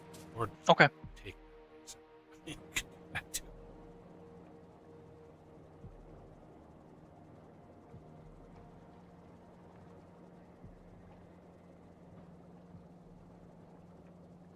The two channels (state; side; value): identical; both; correlation 1.00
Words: or Okay. take that too.